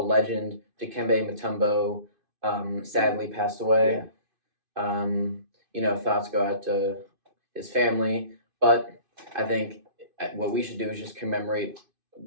legend Dikembe Mutombo sadly passed away. Thoughts go out to his family, but I think what we should do is just commemorate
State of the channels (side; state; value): left; late; 2.5 ms